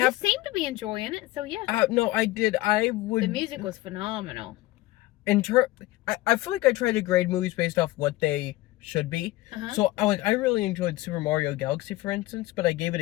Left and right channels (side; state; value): right; quieter; 18.0 dB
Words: seem to be enjoying it, so yeah. No, I did. I would. The music was phenomenal. I feel like I try to grade movies based off what they should be. Uh-huh. So I really enjoyed Super Mario Galaxy, for instance, but I gave it